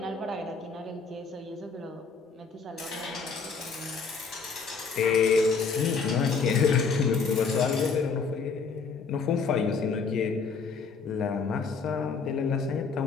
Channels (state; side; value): quieter; right; 5.1 dB